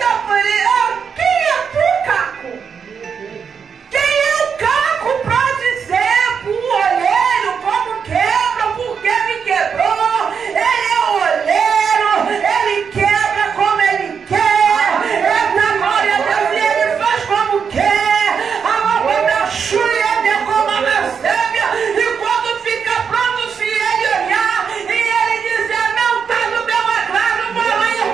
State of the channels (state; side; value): quieter; left; 6.6 dB